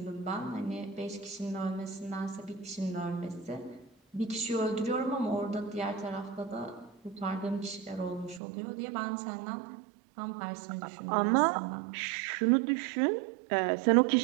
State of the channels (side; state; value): left; drops out; at 8.4 s